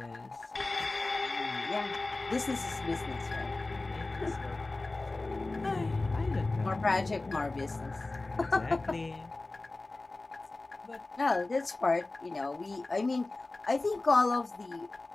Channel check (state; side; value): quieter; right; 3.2 dB